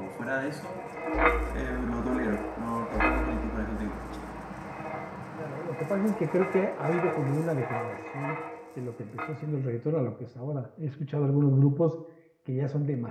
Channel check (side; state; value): both; identical; correlation 1.00